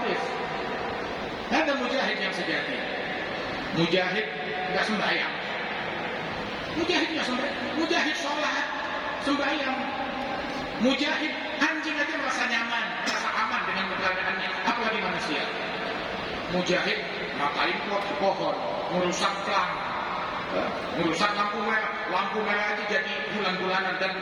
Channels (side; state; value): both; identical; correlation 1.00